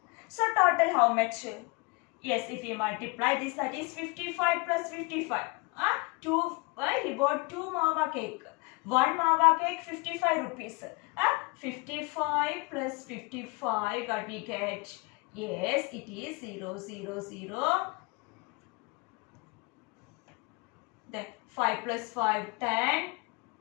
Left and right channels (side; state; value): right; quieter; 27.7 dB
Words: So total how much? Yes, if we multiply this, that is 55 plus 55. He bought 2 mawa cake. 1 mawa cake 55 rupees. 55 plus 55, what we get? Yes, it is 0, 0, 0. Then 5 plus 5, 10.